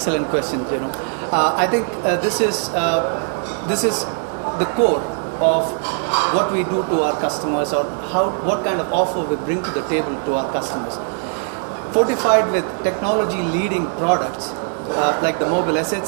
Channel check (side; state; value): left; silent; 56 dB below the other